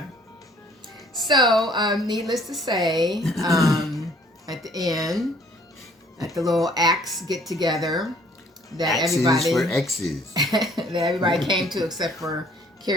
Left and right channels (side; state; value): both; normal; correlation 0.58